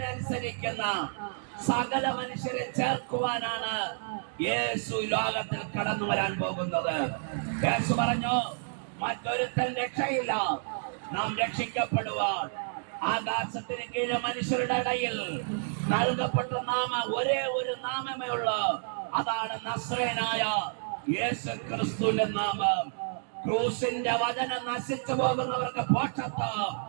അനുസരിക്കുന്ന സകല മനുഷ്യരെ ചേർക്കുവാനാണ് യേശു ലോകത്തിൽ കടന്നു വരാൻ പോകുന്നത്. യേശു പറഞ്ഞു, മറ്റൊരുത്തൻ രക്ഷയില്ല, നാം രക്ഷിക്കപ്പെടുവാൻ ആകാശത്തിന് കീഴെ മനുഷ്യരുടെ ഇടയിൽ നൽകപ്പെട്ട ഒരേ ഒരു നാമമേ ഉള്ളൂ, അതാണ് നസ്രയനായ യേശു ക്രിസ്തുവിന്റെ നാമം. ക്രൂസിന്റെ വചനം നശിച്ചു പോകുന്നവർക്ക് പോഷത്വം,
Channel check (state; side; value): silent; left; digital silence